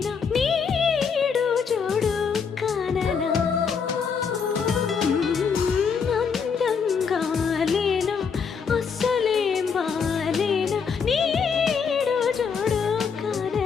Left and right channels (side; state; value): right; quieter; 6.1 dB